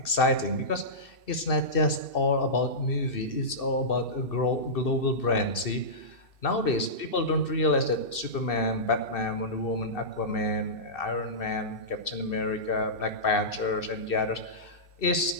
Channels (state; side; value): late; right; 2.6 ms